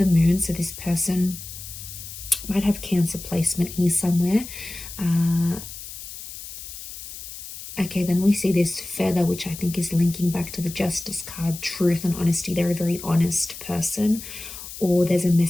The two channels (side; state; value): left; noise; hiss, 12 dB below the sound